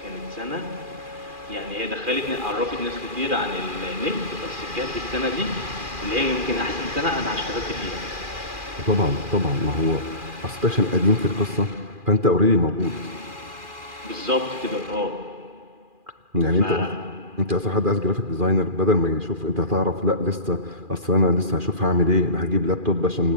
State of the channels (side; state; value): left; late; 2.4 ms